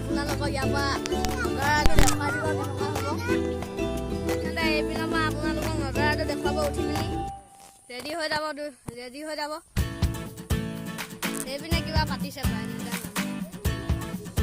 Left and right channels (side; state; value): both; identical; correlation 1.00